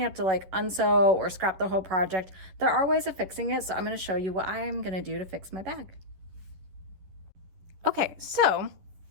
have to like unsew or scrap the whole project. There are ways of fixing it, so I'm going to show you what I'm going to do to fix my bag. Okay, so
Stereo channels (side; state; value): left; late; 11 ms